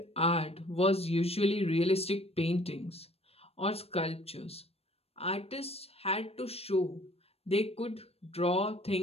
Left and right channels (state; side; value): late; right; 0.29 ms